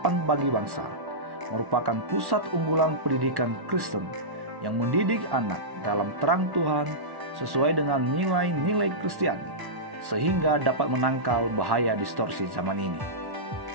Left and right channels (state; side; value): late; left; 1.1 ms